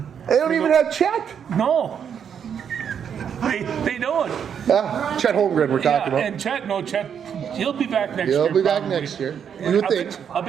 They don't even have Chet. No, they don't. Chet Holmgren we're talking about. And Chet, he'll be back next year. He'll be back probably. next year. You would think. I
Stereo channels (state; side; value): quieter; left; 7.9 dB